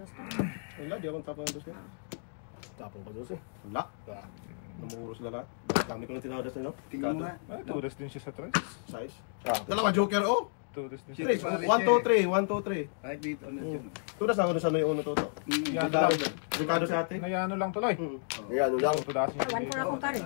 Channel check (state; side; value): silent; right; digital silence